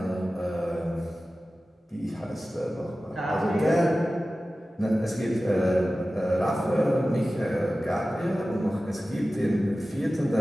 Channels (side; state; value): both; normal; correlation 0.95